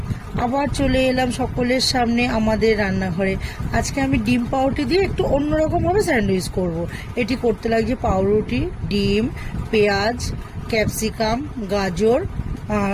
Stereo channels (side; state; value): both; identical; correlation 1.00